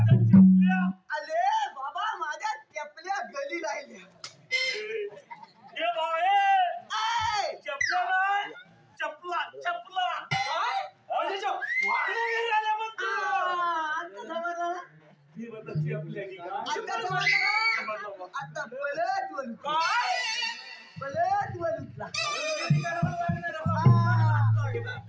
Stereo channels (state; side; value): identical; both; correlation 1.00